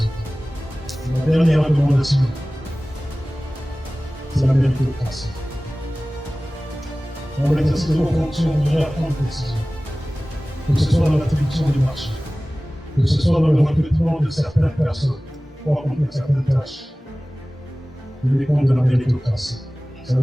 La dernière recommandation, c'est la méritocratie. Dans l'exercice de vos fonctions, vous devrez prendre des décisions. Que ce soit dans l'attribution des marchés, que ce soit dans le recrutement de certaines personnes pour accomplir certaines tâches. Le compte de la méritocratie. Ça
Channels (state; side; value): normal; both; correlation 0.98